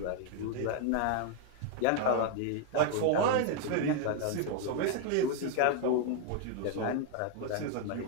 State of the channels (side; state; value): both; different; correlation 0.00